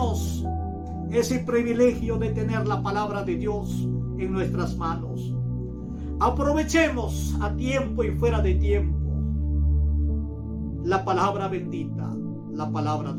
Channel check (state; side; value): identical; both; correlation 1.00